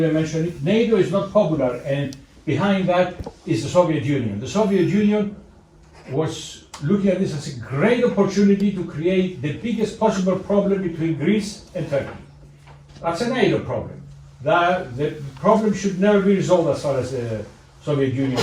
mention it. NATO is not popular, and behind that is the Soviet Union. The Soviet Union was looking at this as a great opportunity to create the biggest possible problem between Greece and Turkey. That's a NATO problem. The problem should never be resolved as far as the Soviet Union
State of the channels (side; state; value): both; identical; correlation 1.00